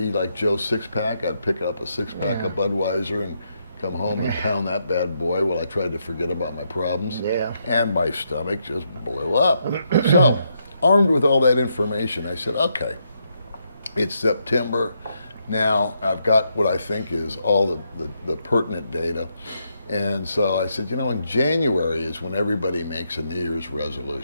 like Joe Sixpack. I'd pick up a six-pack of Budweiser and come home and pound that bad boy while I tried to forget about my problems. Yeah. And my stomach just boil up. So, armed with all that information, I said, okay, it's September. Now I've got what I think is all the pertinent data. And so I said, in January is when everybody makes a New Year's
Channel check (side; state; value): both; inverted; correlation -0.79